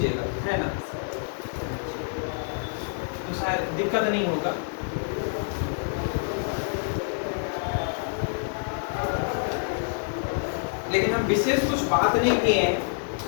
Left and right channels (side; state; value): right; silent; digital silence